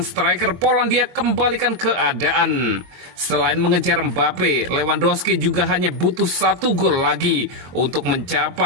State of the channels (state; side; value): late; left; 22 ms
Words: striker Polandia kembalikan keadaan. Selain mengejar Mbappe, Lewandowski juga hanya butuh 1 gol lagi untuk